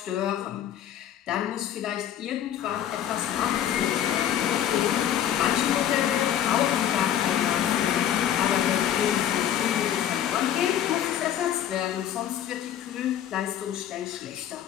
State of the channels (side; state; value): right; quieter; 10.6 dB